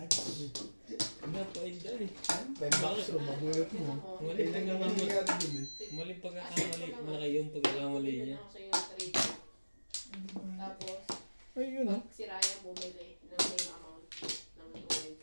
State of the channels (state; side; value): inverted; both; correlation -1.00